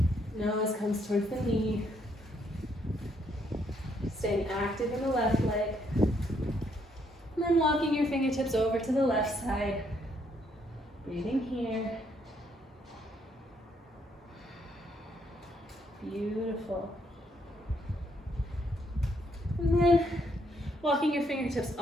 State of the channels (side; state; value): both; normal; correlation 0.72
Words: Nose comes towards the knee. Staying active in the left leg. And then walking your fingertips over to the left side. Breathing here. Beautiful. And then walking your fingertips